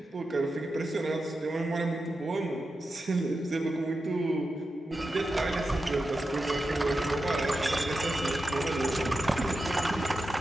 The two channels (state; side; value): normal; both; correlation 0.90